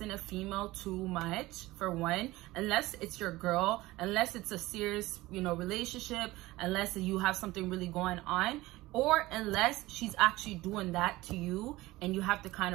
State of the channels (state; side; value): quieter; left; 18.7 dB